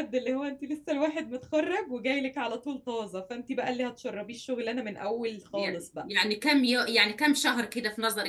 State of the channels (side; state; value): both; identical; correlation 1.00